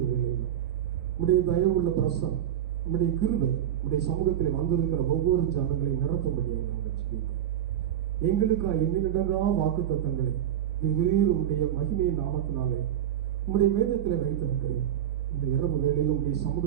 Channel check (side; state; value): left; quieter; 10.6 dB